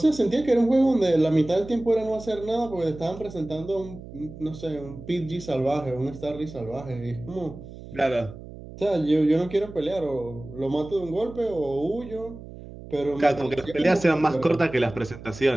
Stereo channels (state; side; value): noise; right; hum, 15 dB below the sound